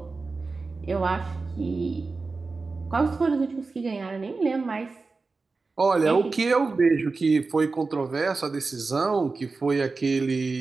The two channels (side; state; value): left; quieter; 4.0 dB